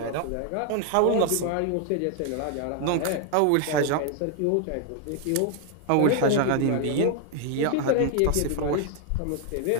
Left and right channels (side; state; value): both; different; correlation 0.00